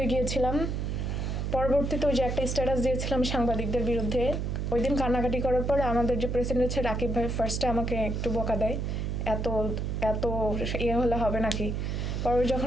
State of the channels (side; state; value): right; noise; hum, 1 dB below the sound